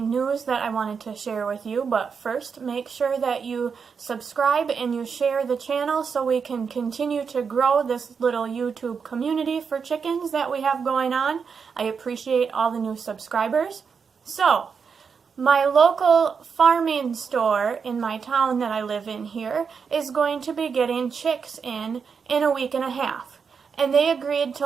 news that I wanted to share with you, but first make sure that you subscribe and you share the channel so we can continue to grow this little YouTube community for chickens that we have going on. I appreciate all the new subscribers. So, my local farming store in my town that I live in here is going to be getting chicks in a week and a half. And they agreed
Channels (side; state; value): left; quieter; 6.0 dB